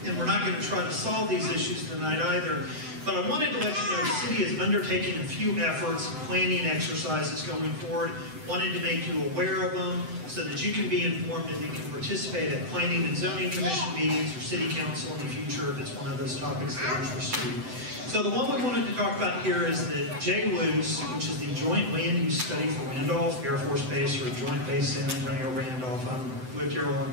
And we're not going to try to solve these issues tonight either. But I wanted to let you know the city is undertaking a few efforts, planning exercises going forward. Wanted to make you aware of them so that you can be informed and you can participate at planning and zoning commission meetings or city council in the future if it's one of those topics that interests you. So the one we wanted to talk about here is the JLUS, which is the Joint Land Use Study for Randolph Air Force Base, or Joint Base San Antonio Randolph. I've lived here a long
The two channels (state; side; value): late; left; 7.9 ms